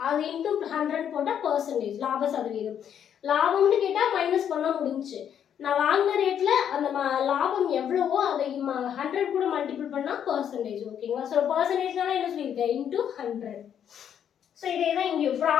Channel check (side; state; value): right; quieter; 9.0 dB